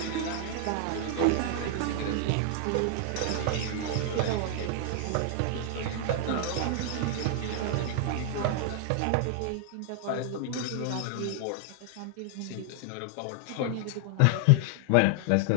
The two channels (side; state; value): both; different; correlation 0.00